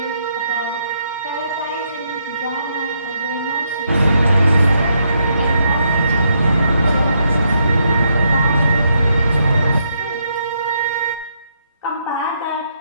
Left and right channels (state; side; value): inverted; both; correlation -0.77